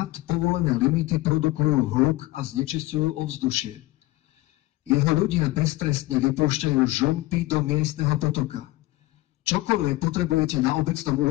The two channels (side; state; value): right; quieter; 18.8 dB